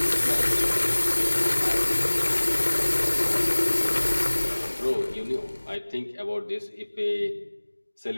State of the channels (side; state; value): both; inverted; correlation -1.00